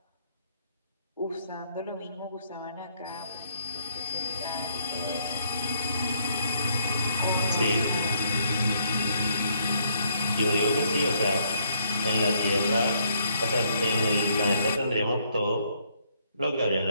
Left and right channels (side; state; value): both; inverted; correlation -0.71